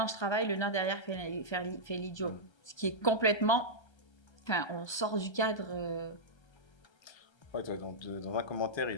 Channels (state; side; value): late; right; 1.3 ms